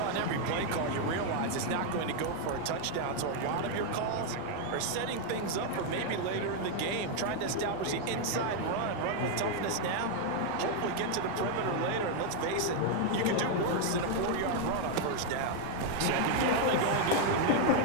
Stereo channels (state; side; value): different; both; correlation 0.00